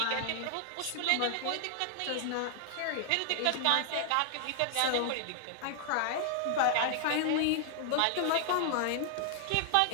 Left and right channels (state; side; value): different; both; correlation 0.00